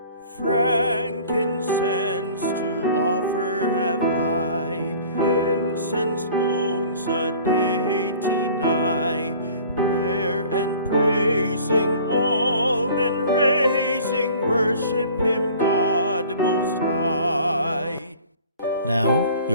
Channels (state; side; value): inverted; both; correlation -0.48